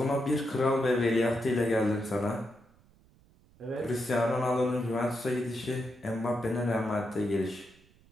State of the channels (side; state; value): right; noise; rumble, 29 dB below the sound